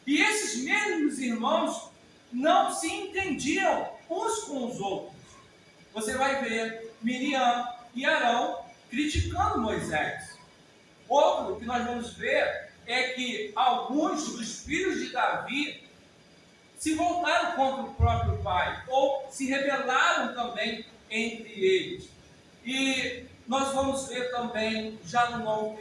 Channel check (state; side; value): identical; both; correlation 1.00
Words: E esses mesmos irmãos não se entendiam uns com os outros. Você vai ver Miriam e Arão criticando Moisés. Outro que nós vamos ver é que alguns dos filhos de Davi se voltaram contra o próprio pai, ou se rebelaram também entre eles. E nós vamos ver também, já no Novo